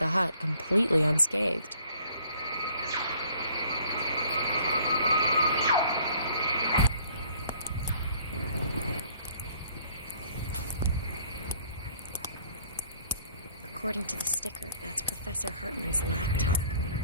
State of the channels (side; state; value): both; inverted; correlation -0.57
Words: hut completely unscathed. According to the sticker, that's Professor Hartman's laptop.